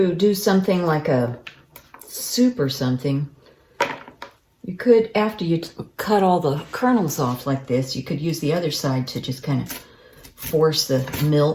do something like a soup or something, you could, after you cut all the kernels off like this, you could use the other side to just kind of force the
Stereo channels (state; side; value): identical; both; correlation 1.00